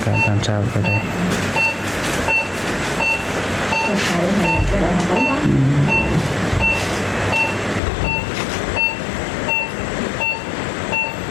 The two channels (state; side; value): drops out; right; at 7.8 s